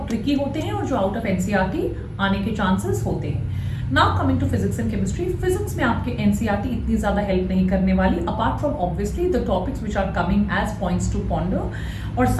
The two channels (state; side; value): identical; both; correlation 1.00